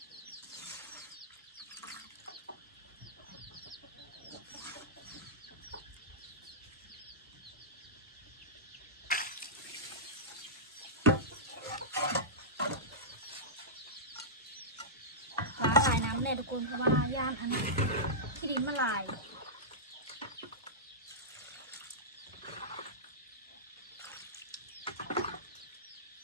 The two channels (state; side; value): normal; both; correlation -0.16